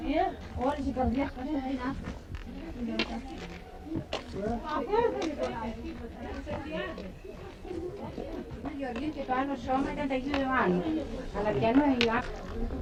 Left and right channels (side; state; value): both; identical; correlation 1.00